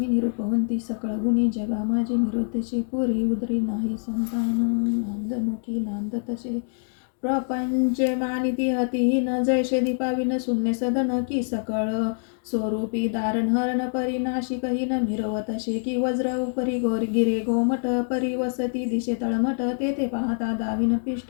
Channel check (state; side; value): silent; right; digital silence